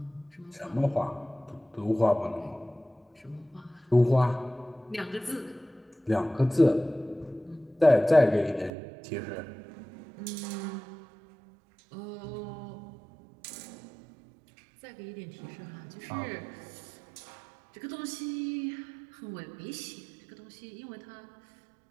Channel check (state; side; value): drops out; left; at 8.7 s